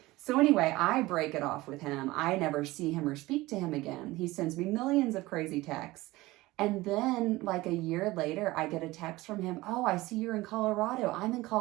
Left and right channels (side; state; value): left; quieter; 19.4 dB